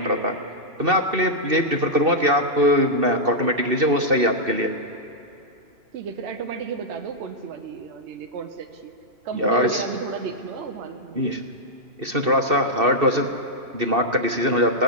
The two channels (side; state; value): left; late; 2.7 ms